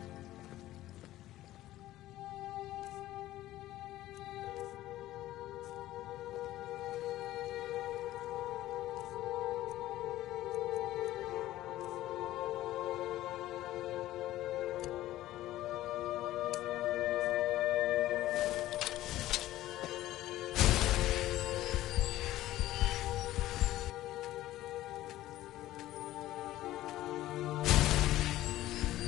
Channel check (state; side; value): quieter; right; 15.0 dB